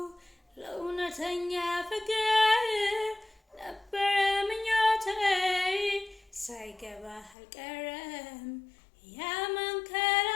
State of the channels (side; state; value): right; drops out; at 7.4 s